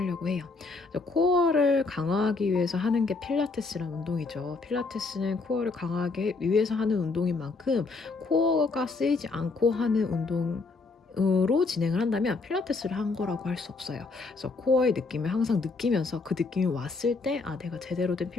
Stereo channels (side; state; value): right; quieter; 3.9 dB